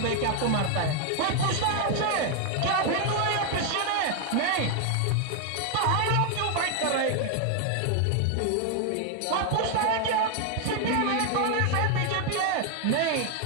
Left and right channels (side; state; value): both; different; correlation 0.01